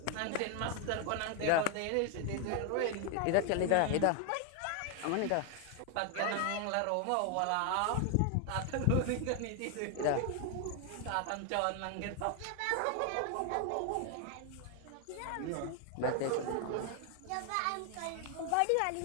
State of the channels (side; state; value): both; different; correlation 0.01